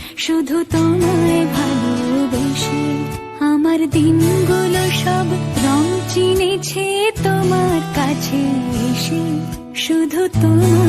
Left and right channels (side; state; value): both; identical; correlation 1.00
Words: শুধু তোমায় ভালোবেসে। আমার দিনগুলো সব রং চিনেছে তোমার কাছে এসে, শুধু